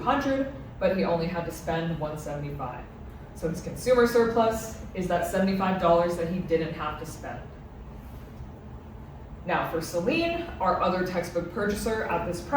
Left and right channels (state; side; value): identical; both; correlation 1.00